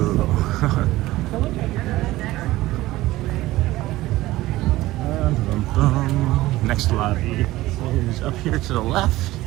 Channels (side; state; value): left; quieter; 17.2 dB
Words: Next lobby is up here to the left